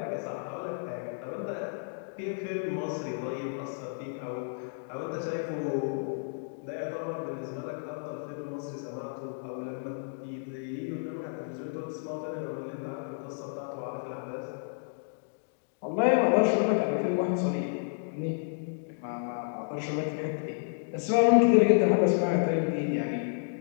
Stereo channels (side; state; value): right; silent; digital silence